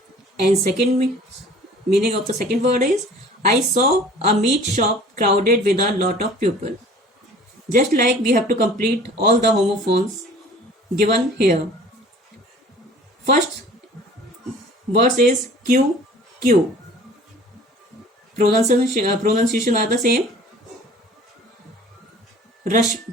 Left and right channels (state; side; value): normal; both; correlation 0.47